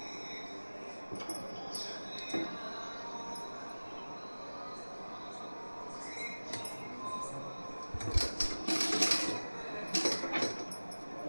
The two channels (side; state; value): both; inverted; correlation -1.00